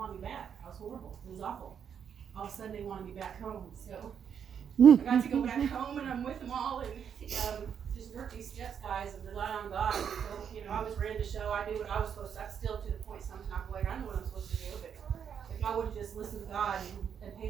me back. I was horrible. It was awful. All of a sudden, they wanted me back home. So I got to go back home, and I'm with them all, and just work these steps, guys, and rely on God. So, I was ready to show. I knew what I was supposed to. I'm still to the point sometimes like I know what I'm supposed to do, but if I would have just listened to God and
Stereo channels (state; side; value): quieter; left; 7.8 dB